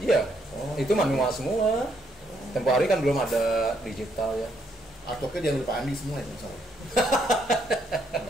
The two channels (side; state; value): both; normal; correlation 0.73